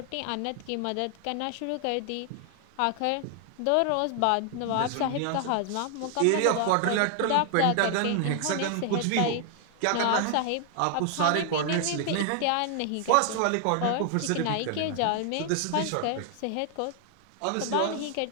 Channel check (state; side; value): different; both; correlation 0.00